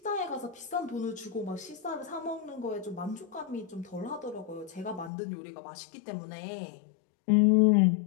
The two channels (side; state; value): right; drops out; at 5.1 s